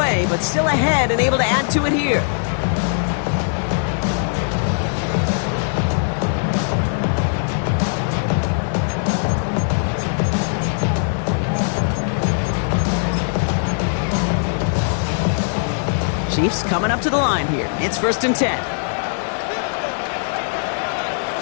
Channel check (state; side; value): silent; right; digital silence